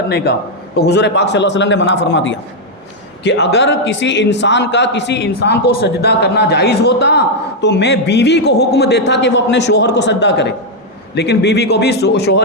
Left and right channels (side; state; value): both; normal; correlation -0.01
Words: کا۔ تو حضور پاک صلی اللہ علیہ وسلم نے منع فرما دیا کہ اگر کسی انسان کو سجدہ کرنا جائز ہوتا تو میں بیوی کو حکم دیتا کہ وہ اپنے شوہر کو سجدہ کرے، لیکن بیوی کو بھی